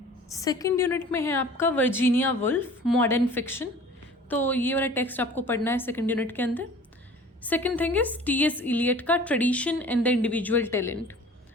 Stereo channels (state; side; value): normal; both; correlation 0.45